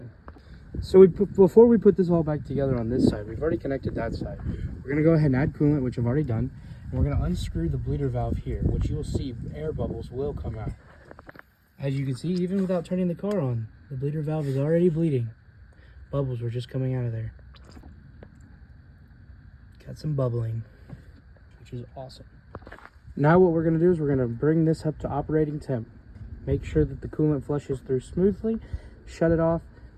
So before we put this all back together on this side, we've already connected that side. We're going to go ahead and add coolant, which I've already done. And we're going to unscrew the bleeder valve here, which you'll see air bubbles will come out. As you can see, even without turning the car on, the bleeder valve is already bleeding. Bubbles were just coming out of there. Got some bubbling, which is awesome. Now what we're going to do is we're going to bring this up to operating temp. Make sure that the coolant flushes through smoothly, shut it off,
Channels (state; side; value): identical; both; correlation 1.00